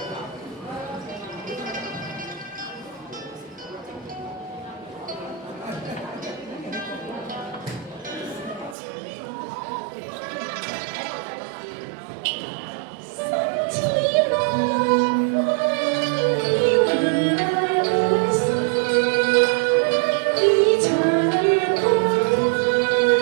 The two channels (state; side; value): drops out; left; at 8.8 s